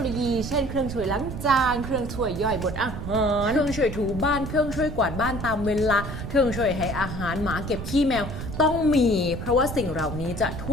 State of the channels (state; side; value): noise; right; rumble, 7 dB below the sound